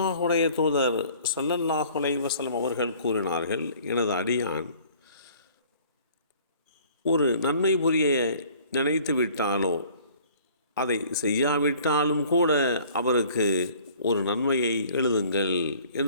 தூதர் ஸல்லல்லாஹு அலைஹி வஸல்லம் அவர்கள் கூறினார்கள், எனது அடியான் ஒரு நன்மை புரிய நினைத்து விட்டாலோ அதை செய்யாவிட்டாலும் கூட அவருக்கு ஒரு நன்மையை எழுதுங்கள்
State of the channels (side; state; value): both; inverted; correlation -0.53